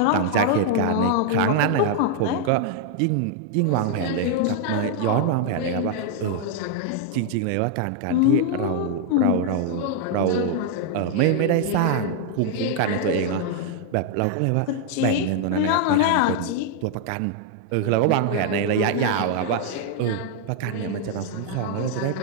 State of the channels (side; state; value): both; different; correlation 0.00